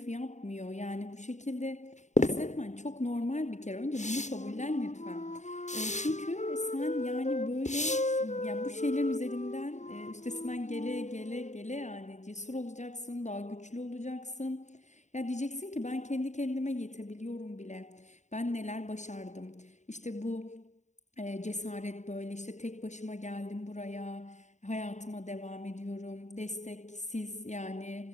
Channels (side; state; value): right; late; 0.34 ms